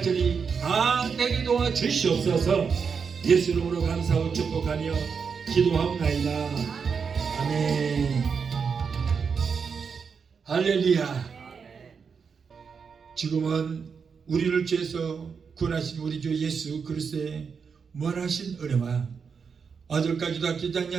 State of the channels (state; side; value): quieter; left; 6.0 dB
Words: 다 되게 도와 주시옵소서. 예수 이름으로 감사하고 축복하며 기도하옵나이다. 아멘. 할렐루야. 지금은 우리를 죄에서 구원하신 우리 주 예수 그리스도의 무한하신 은혜와 아들까지도 아끼지